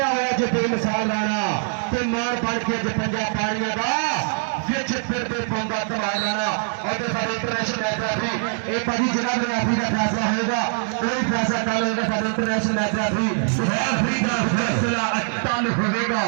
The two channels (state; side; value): silent; left; 59 dB below the other